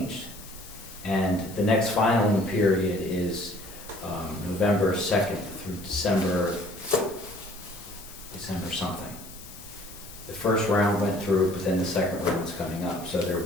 And the next filing period is November 2nd through December something. The first round went through, but then the second round's coming up. So there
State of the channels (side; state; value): left; noise; hiss, 16 dB below the sound